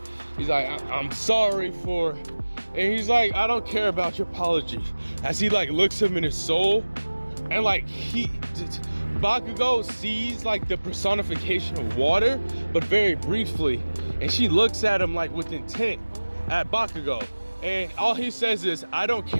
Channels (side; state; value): both; inverted; correlation -1.00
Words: He's like, I'm sorry for, and he's like, I don't care about your apology. As he like looks him in his soul, and like Bakugo sees like the personification of water, but very briefly. And she looks at him like with intent at Bakugo. And all he says is, I don't